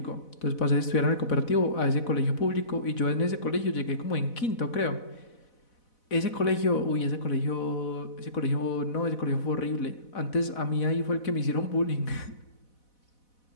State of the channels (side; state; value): right; late; 4.1 ms